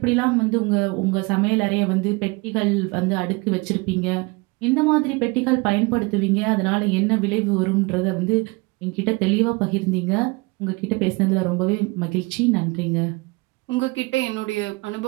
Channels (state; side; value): quieter; left; 26.4 dB